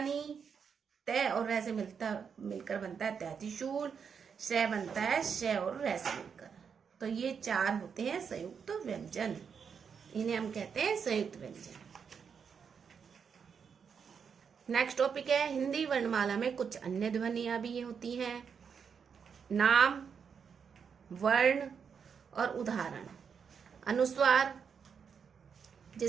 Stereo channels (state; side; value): quieter; left; 6.6 dB